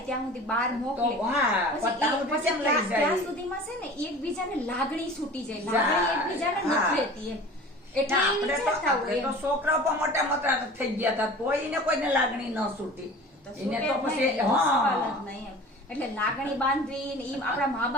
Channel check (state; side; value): normal; both; correlation 0.40